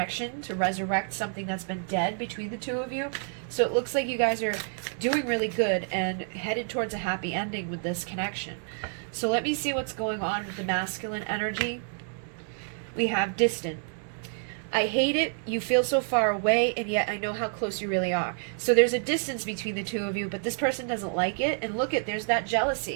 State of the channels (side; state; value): left; silent; 59 dB below the other